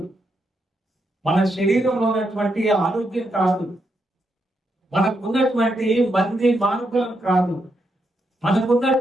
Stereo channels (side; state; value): both; normal; correlation 0.81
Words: మన శరీరంలో ఉన్నటువంటి ఆరోగ్యం కాదు, మనకున్నటువంటి మంది మార్గం కాదు,